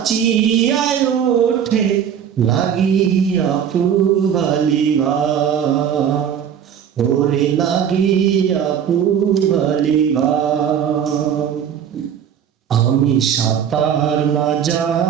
ওঠে, লাগিয়া পুবালিবা, ওরে লাগিয়া পুবালিবা। আমি সাঁতার না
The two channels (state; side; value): quieter; left; 8.6 dB